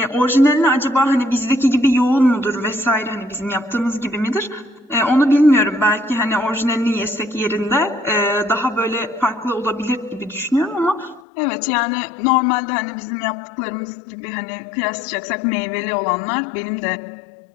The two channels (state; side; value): drops out; right; at 11.2 s